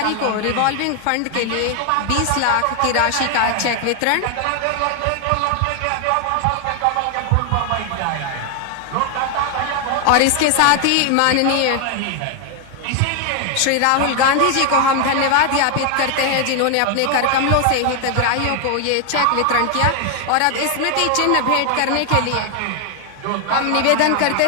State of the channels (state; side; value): different; both; correlation 0.00